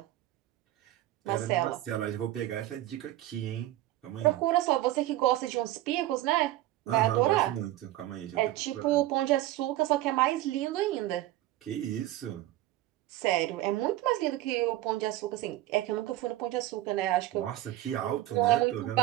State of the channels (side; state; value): left; quieter; 15.1 dB